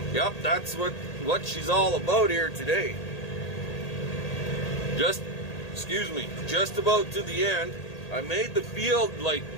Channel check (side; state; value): right; late; 1.8 ms